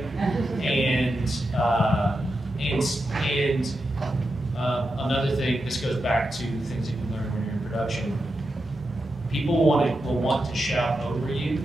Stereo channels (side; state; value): both; normal; correlation 0.88